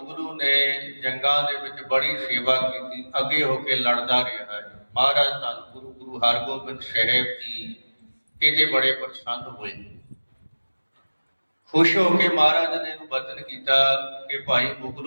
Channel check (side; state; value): both; inverted; correlation -1.00